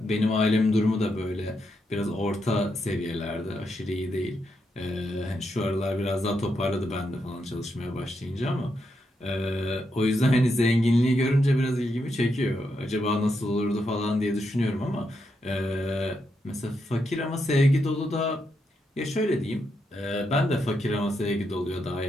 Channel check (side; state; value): both; normal; correlation 0.82